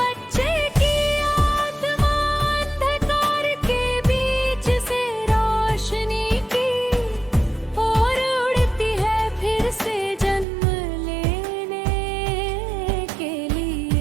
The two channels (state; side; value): drops out; left; at 10.5 s